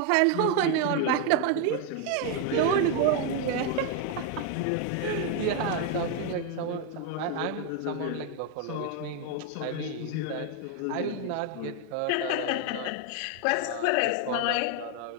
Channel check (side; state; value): both; different; correlation 0.01